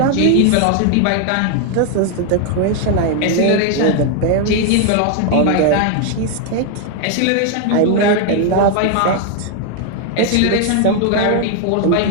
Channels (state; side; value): different; both; correlation 0.00